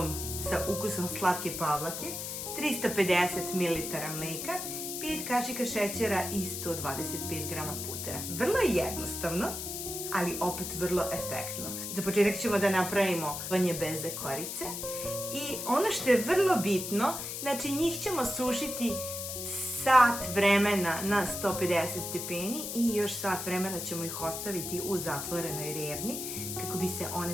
sa ukusom slatke pavlake, 350 ml mleka, 5 kašika šećera i 125 grama putera. Vrlo je jednostavno, ali opet vrlo efektno. Za početak ćemo da napravimo vanje beze korice i ono što je vrlo bitno, znači njih ćemo sušiti sat vremena na 150 stepeni i još sat vremena ćemo ih ostaviti u zatvorenoj rerni kako bi se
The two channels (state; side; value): noise; left; hiss, 5 dB below the sound